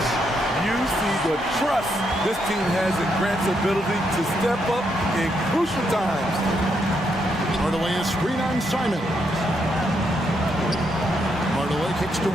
You see the trust this team has in Grant's ability to step up in crucial times. Hardaway is screen on Simon. Hardaway kicks to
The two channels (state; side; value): normal; both; correlation 0.78